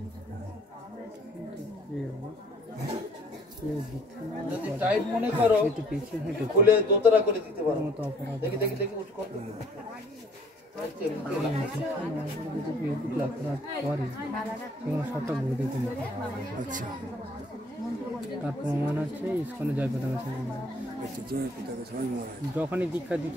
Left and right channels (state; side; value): normal; both; correlation 0.59